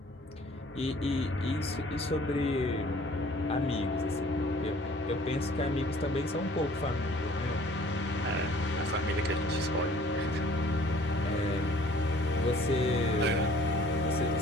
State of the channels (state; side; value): normal; both; correlation 0.53